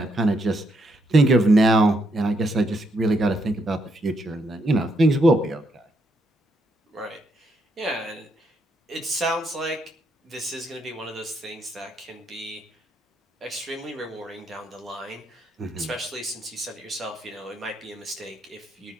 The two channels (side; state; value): both; normal; correlation 0.76